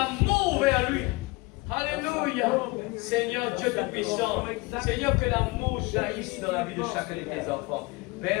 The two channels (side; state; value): right; quieter; 24.8 dB